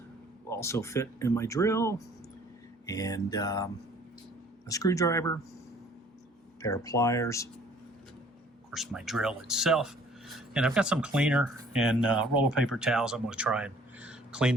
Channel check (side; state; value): both; normal; correlation 0.56